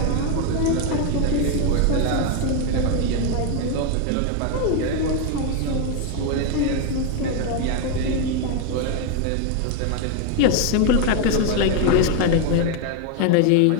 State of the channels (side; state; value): both; different; correlation 0.01